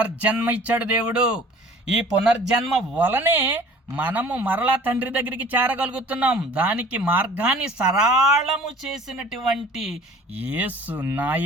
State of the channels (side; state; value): both; normal; correlation 0.48